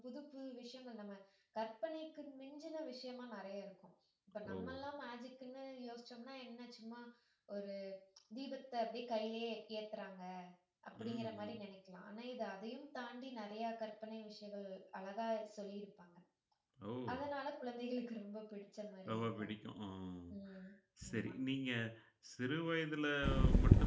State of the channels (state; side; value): identical; both; correlation 1.00